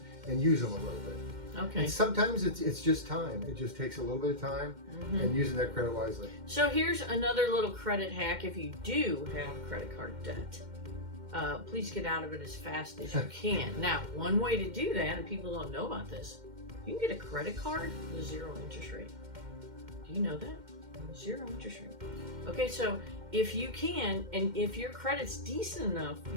and use them a little bit. Okay. And sometimes it's just time. It just takes a little bit of time and using that credit wisely. So here's another little credit hack. If you do have credit card debt, please get out of it as fast as you can. Now, one way to do that, and people don't know about this, you can get a credit card with 0 interest rate. Do you know that? 0 interest rate. Okay, so if you can, and if your credit's decent enough,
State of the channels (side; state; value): left; late; 2.1 ms